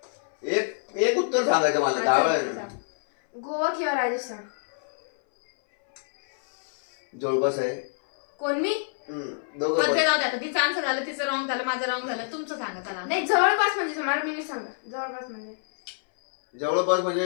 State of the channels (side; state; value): right; silent; 60 dB below the other